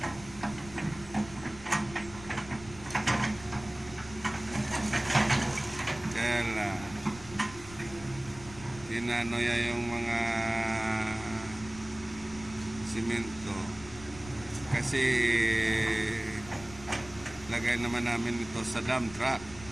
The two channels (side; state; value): left; noise; rumble, 17 dB below the sound